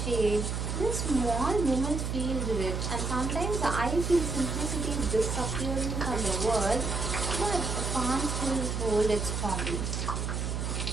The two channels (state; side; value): noise; right; hum, 2 dB below the sound